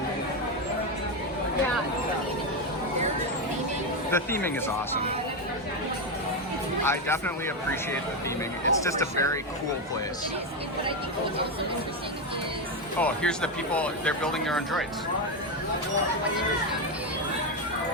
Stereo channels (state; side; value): normal; both; correlation 0.09